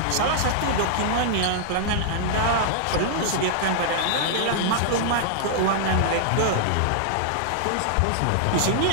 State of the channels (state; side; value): different; both; correlation -0.01